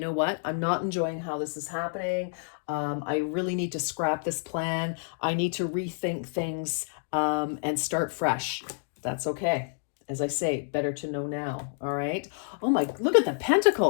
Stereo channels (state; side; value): silent; right; digital silence